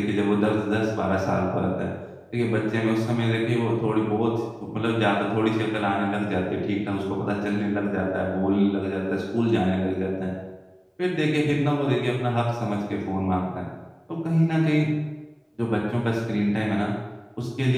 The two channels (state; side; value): identical; both; correlation 1.00